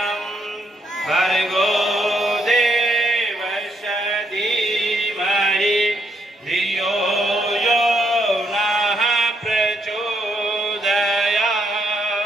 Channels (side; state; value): both; normal; correlation 0.76